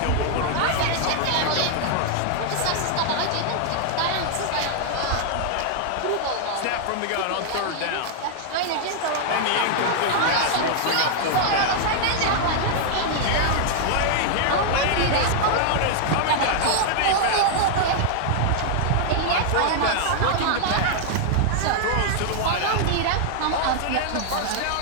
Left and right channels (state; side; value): different; both; correlation -0.01